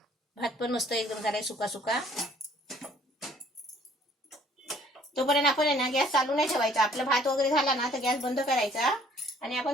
भात पण मस्त एकदम झालाय सुका सुका. तोपर्यंत आपण आहे ना गॅस चालू नाही ठेवायचा. आपला भात वगैरे झाला ना तर गॅस बंद करायचा आणि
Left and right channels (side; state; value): both; normal; correlation 0.58